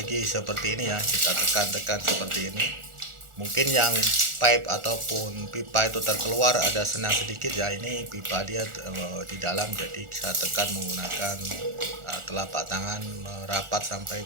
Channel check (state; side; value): late; left; 1.4 ms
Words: seperti ini ya, kita tekan seperti ini. Mungkin yang pipe ataupun pipa itu terkeluar ada senang sedikit ya, ini pipa dia di dalam, jadi saya tekan menggunakan telapak tangan merapat